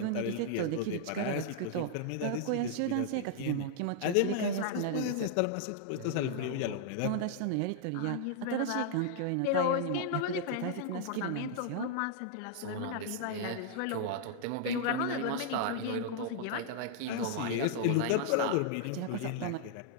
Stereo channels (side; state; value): both; different; correlation -0.01